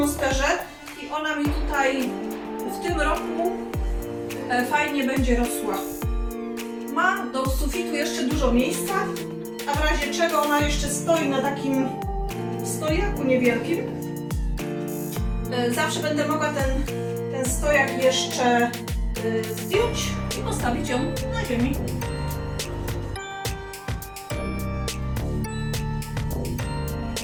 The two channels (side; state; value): both; identical; correlation 1.00